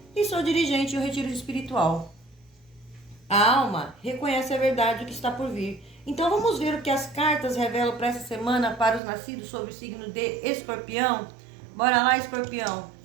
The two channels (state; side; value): drops out; left; at 9.0 s